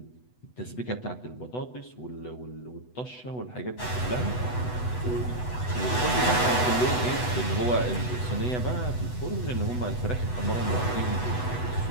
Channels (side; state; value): right; late; 8.1 ms